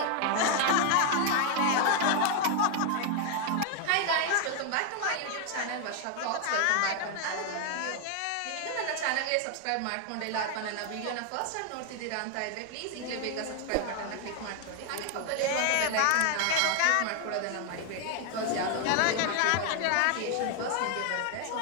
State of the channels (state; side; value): different; both; correlation 0.01